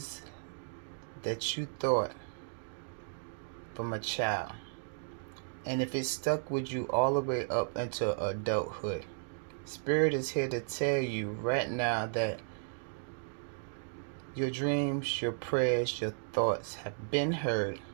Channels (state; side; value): silent; left; digital silence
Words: that you thought from a child, and if it stuck with you all the way up into adulthood, Spirit is here to tell you right now that your dreams, your prayers, your thoughts have been heard.